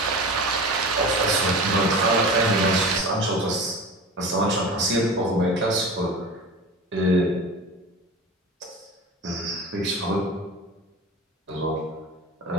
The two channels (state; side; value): normal; both; correlation 0.33